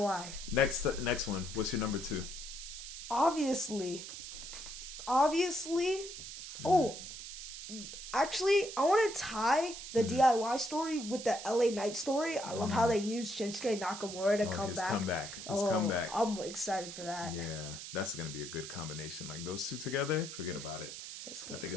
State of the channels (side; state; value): right; noise; hiss, 10 dB below the sound